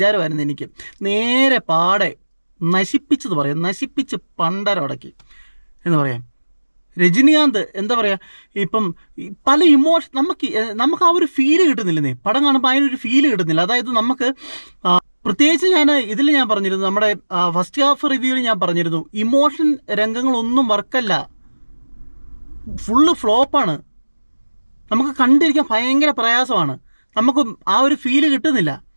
എനിക്ക്. നേരെ പാടെ നശിപ്പിച്ച് പണ്ടരടക്കി എന്ന് പറയാം. രജനികാന്ത് എന്താ പറയുക, ഇപ്പം പല ഇമോഷൻ നമുക്ക് ആ ഒരു ഫീല് കിട്ടുന്നില്ലെന്നേ. പടം കാണുമ്പോൾ അതിനൊരു ഫീല് കിട്ടുന്നില്ല. അതായത് നമുക്ക് പ്രത്യേകിച്ച് ഞാൻ പറഞ്ഞിരുന്നു, നമ്മുടെ ഫസ്റ്റ് ഹാഫ് റിവ്യൂവിൽ ഞാൻ പറഞ്ഞിരുന്നു, ഇമോഷൻ രംഗങ്ങളൊന്നും വർക്കല്ല, ഫുള്ള് ഫ്ലോപ്പാണ്. നമുക്ക് കണ്ടിരിക്കാൻ ഭയങ്കര പ്രയാസമാണ്. നമുക്ക് ആ ഒരു ഫീല് കിട്ടുന്നില്ല.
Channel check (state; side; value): inverted; both; correlation -1.00